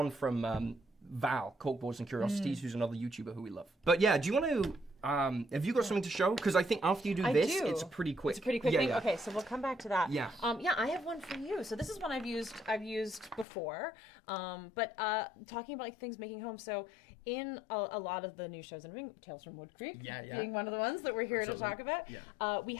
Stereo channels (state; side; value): drops out; right; at 13.5 s